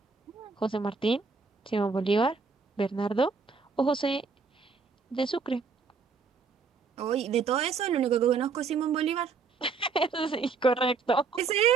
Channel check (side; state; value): left; quieter; 4.9 dB